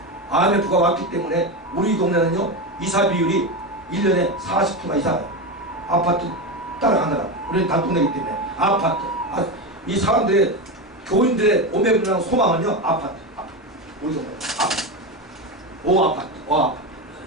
IMF가 왔기 때문에 우리 동네는요 이사 비율이 1년에 40%가 이사가요. 아파트 따라가느라 우리는 단독내기 때문에 아파트 이 사람들의 교인들의 오매불망 소망은요 아파트 우리 동네 아파트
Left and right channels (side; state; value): both; normal; correlation 0.16